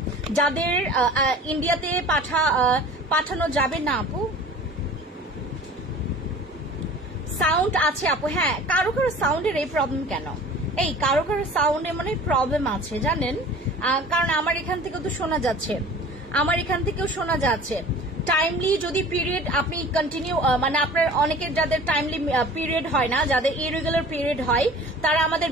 যাদের ইন্ডিয়াতে পাঠানো যাবে না আপু, সাউন্ড আছে আপু, হ্যাঁ, কারো সাউন্ডের এই প্রবলেম কেন? এই কারো সাউন্ডে মানে প্রবলেম আছে জানেন, কারণ আমার এখান থেকেও তো শোনা যাচ্ছে, আমার এখান থেকেও শোনা যাচ্ছে। টাইমলি যদি পিরিয়ড আপনি কন্টিনিউ মানে আপনার অনেকের যাদের টাইমলি পিরিয়ড হয় না, যাদের ইরেগুলার পিরিয়ড হয়, তারা আমাদের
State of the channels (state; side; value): normal; both; correlation 0.43